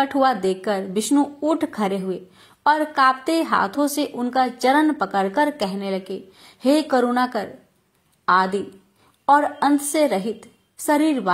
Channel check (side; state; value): both; identical; correlation 1.00